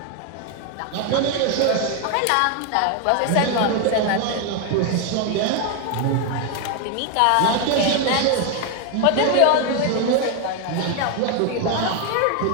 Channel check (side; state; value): both; different; correlation 0.01